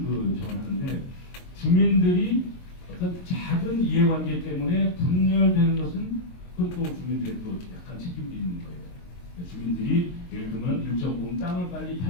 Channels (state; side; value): late; right; 22 ms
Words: 전하는데 주민들이 어떤 작은 이해관계 때문에 분열되는 것은 그건 또 주민들의 또 약간 책임도 있는 거예요. 주민들이 예를 들면 일정 부분 땅을 빨리